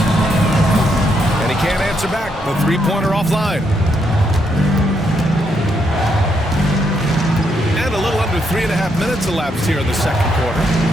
And he can't answer back. The 3-pointer offline. And a little under 3.5 minutes elapsed here in the 2nd quarter.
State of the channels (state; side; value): normal; both; correlation 0.77